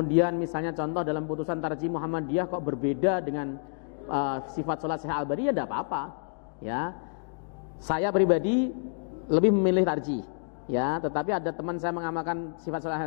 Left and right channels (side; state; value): right; silent; digital silence